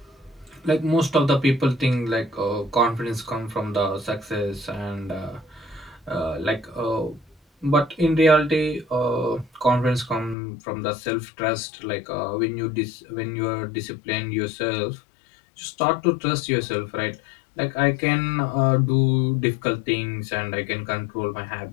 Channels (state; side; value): drops out; right; at 10.4 s